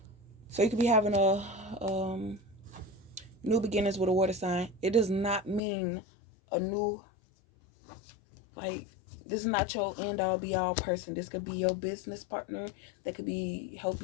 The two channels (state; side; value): drops out; right; at 5.6 s